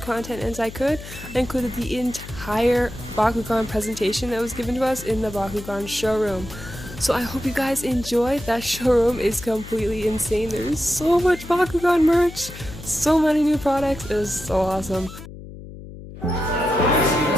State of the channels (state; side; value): noise; left; hum, 14 dB below the sound